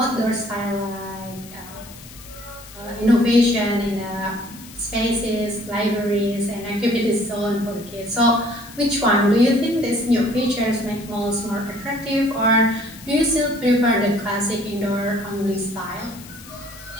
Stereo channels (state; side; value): noise; left; hiss, 18 dB below the sound